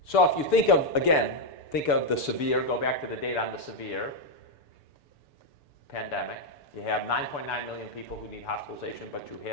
So if you think of, again, think of the severe, go back to the data on the severe pandemic. You have 9.9 million people who need hospitalization, but you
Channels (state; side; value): late; right; 6.9 ms